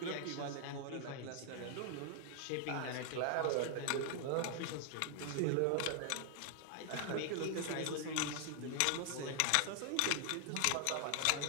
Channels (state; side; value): different; both; correlation 0.00